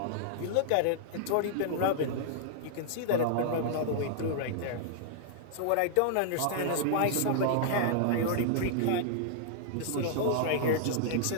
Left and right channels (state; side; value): different; both; correlation -0.01